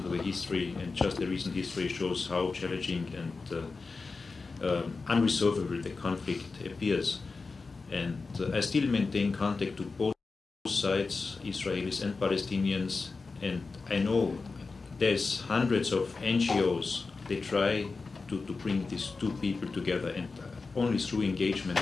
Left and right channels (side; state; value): right; quieter; 4.1 dB